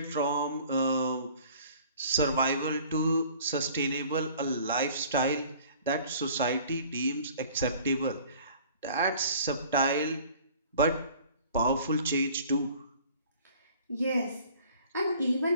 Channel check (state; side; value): inverted; both; correlation -0.50